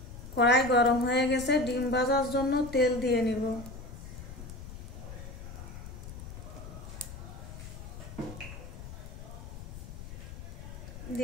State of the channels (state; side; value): noise; left; rumble, 11 dB below the sound